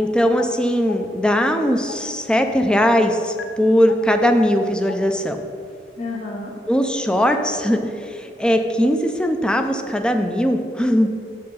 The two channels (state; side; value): normal; both; correlation 0.83